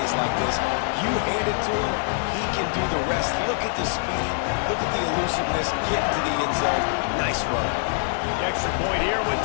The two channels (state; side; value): silent; right; 59 dB below the other